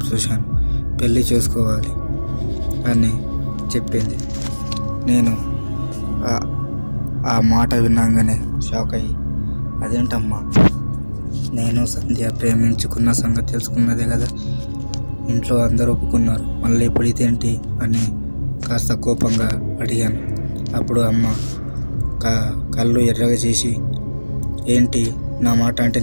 చూశాను, పెళ్ళి చేసుకోవాలి అని చెప్పింది. నేను ఆ మాట విన్నాగానే షాక్ అయ్యి, అదేంటమ్మా, నేను సంధ్య ప్రేమించుకున్న సంగతి తెలుసుకున్నదే కదా, ఇంట్లో అందరూ ఒప్పుకున్నారు, మళ్ళీ ఇప్పుడు ఇదేంటి అని కాస్త కోపంగా అడిగాను. అప్పుడు అమ్మ కళ్ళు ఎర్రగా చేసి, ఏంటి నా మాట అంటే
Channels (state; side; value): inverted; both; correlation -1.00